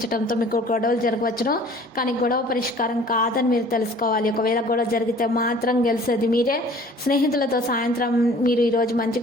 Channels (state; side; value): normal; both; correlation 0.50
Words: మీకు గొడవలు జరగవచ్చును. కానీ గొడవ పరిష్కారం కాదని మీరు తెలుసుకోవాలి. ఒకవేళ గొడవ జరిగితే మాత్రం గెలిచేది మీరే. స్నేహితులతో సాయంత్రం మీరు ఈ రోజు